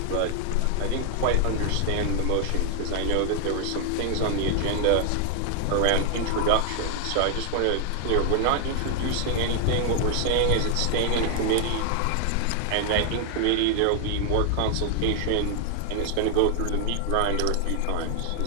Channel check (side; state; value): both; different; correlation 0.00